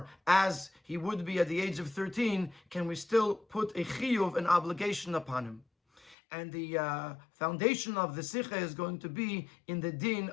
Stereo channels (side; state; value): right; drops out; at 6.2 s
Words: as he would be at the age of 13, can we still put a chiyuv, an obligation upon him? And the foundation of the Sicha is going to be in the din